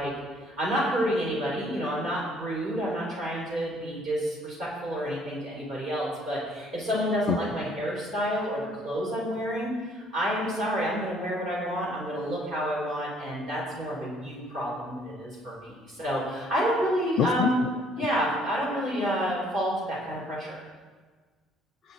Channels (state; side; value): normal; both; correlation 0.62